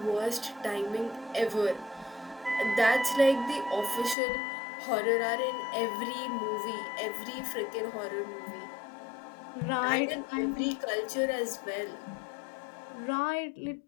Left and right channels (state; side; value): drops out; right; at 4.2 s